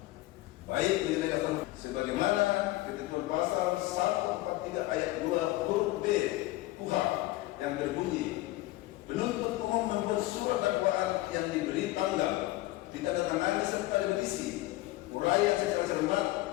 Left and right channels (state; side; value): quieter; right; 18.2 dB